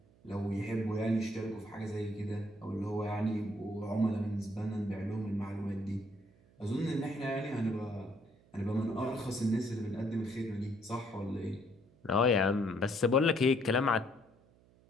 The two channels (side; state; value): right; noise; hum, 29 dB below the sound